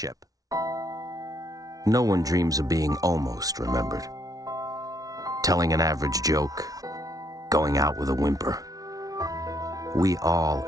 No one dreams of being almost remembered. Telling an average joke. Going out with a whimper. We all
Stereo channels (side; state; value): left; late; 0.18 ms